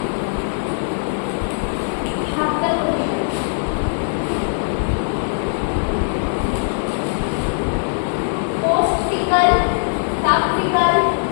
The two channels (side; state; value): right; silent; digital silence